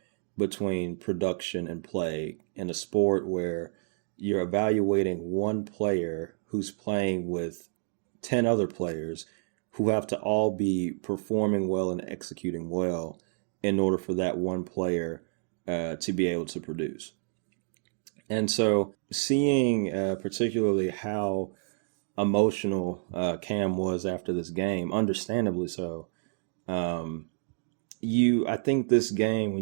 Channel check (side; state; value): left; silent; digital silence